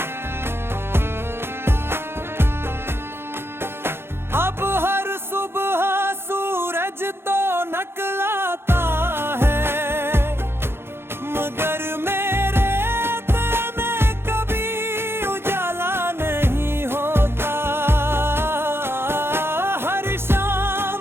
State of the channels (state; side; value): late; left; 0.11 ms